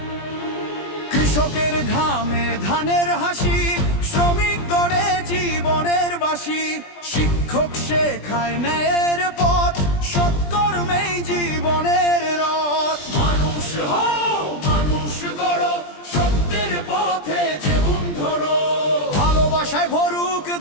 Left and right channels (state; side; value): late; right; 20 ms